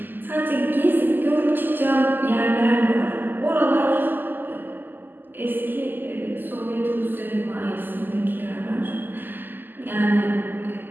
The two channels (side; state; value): left; late; 0.090 ms